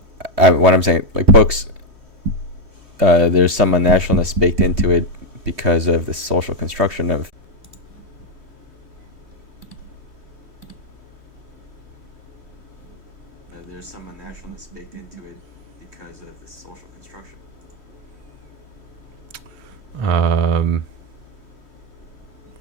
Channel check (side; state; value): left; late; 3.2 ms